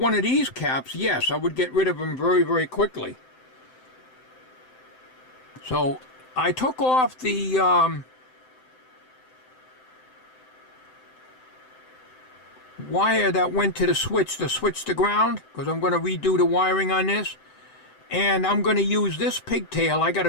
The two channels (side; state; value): right; late; 7.8 ms